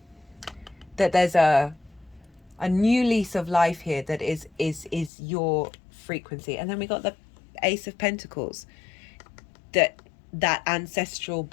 That there's a new lease of life here that is your frequency. And then we got the Ace of Pentacles, that ancestral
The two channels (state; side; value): drops out; right; at 5.1 s